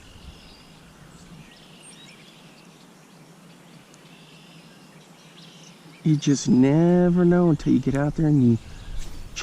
You just never know until you get out there and you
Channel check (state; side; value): identical; both; correlation 1.00